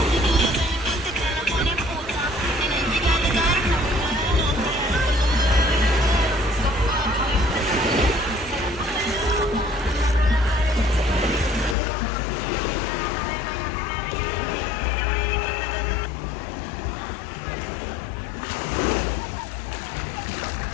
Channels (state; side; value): drops out; right; at 11.8 s